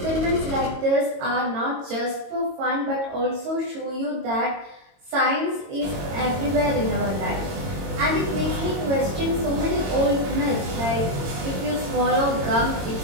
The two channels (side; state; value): left; late; 22 ms